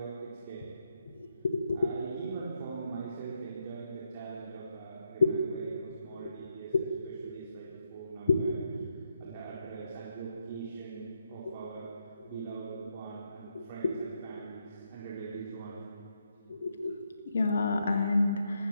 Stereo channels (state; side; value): inverted; both; correlation -0.80